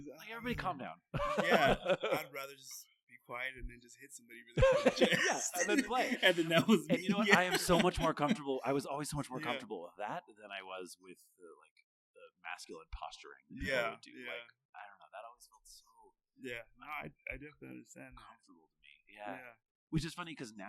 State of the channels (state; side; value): identical; both; correlation 1.00